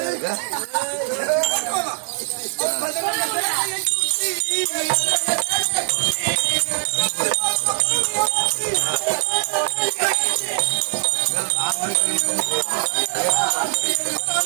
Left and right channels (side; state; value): left; silent; digital silence